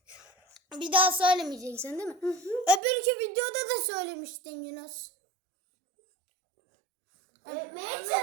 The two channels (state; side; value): drops out; left; at 2.8 s